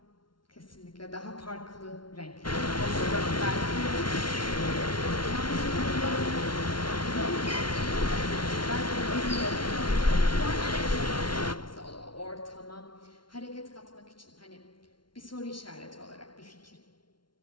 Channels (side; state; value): right; late; 0.73 ms